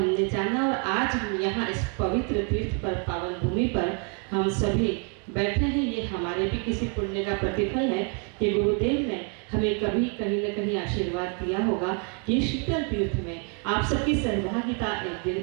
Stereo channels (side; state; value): left; quieter; 38.2 dB